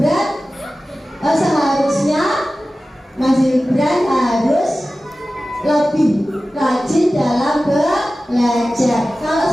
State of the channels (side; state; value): both; normal; correlation 0.95